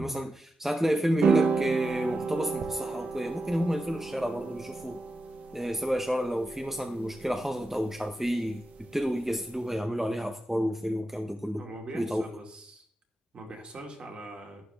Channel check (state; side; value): normal; both; correlation 0.90